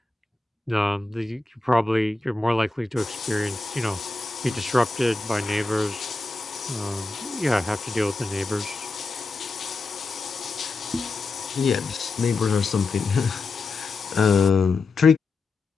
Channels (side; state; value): right; quieter; 3.5 dB